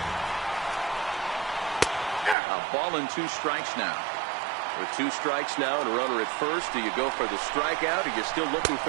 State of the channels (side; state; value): left; drops out; at 2.4 s